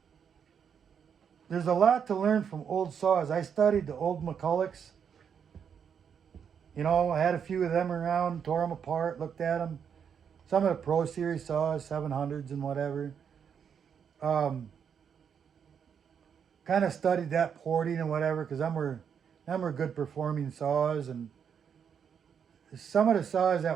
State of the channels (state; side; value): quieter; left; 7.5 dB